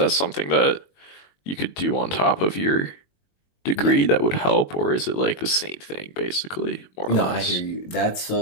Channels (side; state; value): right; late; 21 ms